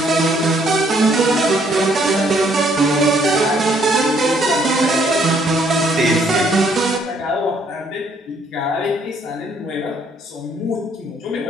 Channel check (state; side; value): normal; both; correlation 0.67